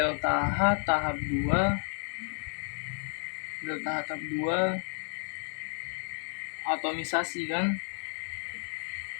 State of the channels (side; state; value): right; silent; 57 dB below the other